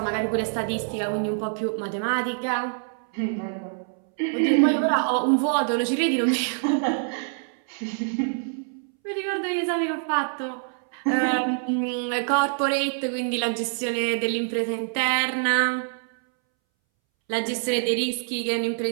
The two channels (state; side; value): silent; left; 61 dB below the other